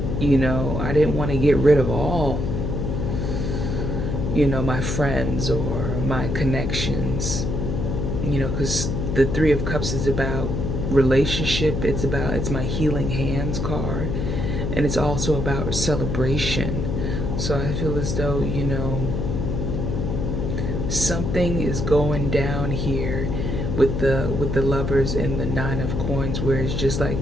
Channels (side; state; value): left; noise; hum, 1 dB below the sound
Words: I didn't want to get rid of all, my friends or my connections, because the Three of Cups is about relationship. It's my healing hands card, and it's also about celebration. So I feel as though, something is going down here with the Lovers and the Nine of Coins, where it's just like,